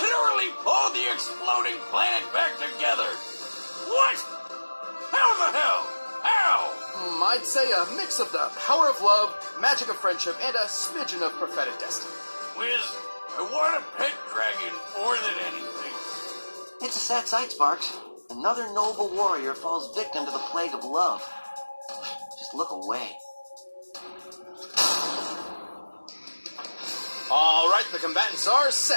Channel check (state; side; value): inverted; both; correlation -1.00